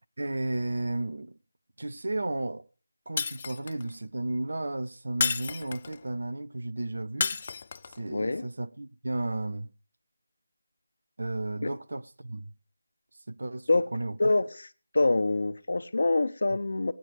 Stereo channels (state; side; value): inverted; both; correlation -0.96